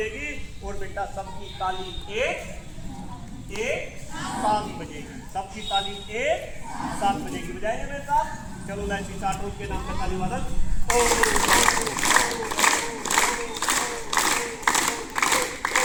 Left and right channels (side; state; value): both; identical; correlation 1.00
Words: और बेटा सबकी ताली एक साथ बजेगी। सबकी ताली एक साथ बजेगी। बजाएंगे मेरे साथ? चलो लाइन चार्ट के नाम पे ताली वादन।